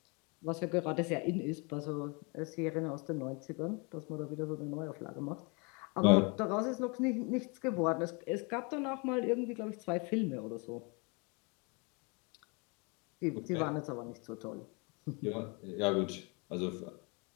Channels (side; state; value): right; quieter; 31.4 dB